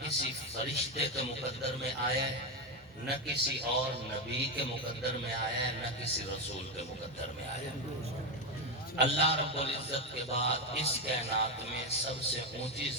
کسی فرشتے کے مقدر میں آیا ہے، نہ کسی اور نبی کے مقدر میں آیا ہے، نہ کسی رسول کے مقدر میں آیا ہے۔ اللہ رب العزت کے بعد اس کائنات میں سب سے اونچی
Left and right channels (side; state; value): both; normal; correlation 0.10